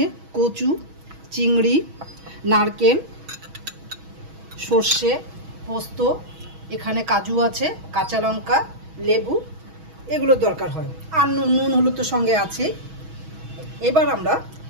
কচু, চিংড়ি, নারকেল, সর্ষে, পোস্ত, এখানে কাজু আছে, কাঁচা লঙ্কা, লেবু, এগুলোর দরকার হয়। আর নুন হলুদ তো সঙ্গে আছে। এবার আমরা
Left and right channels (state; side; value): late; left; 6.2 ms